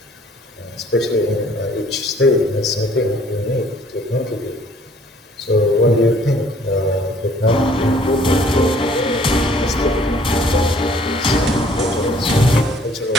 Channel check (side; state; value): both; normal; correlation 0.58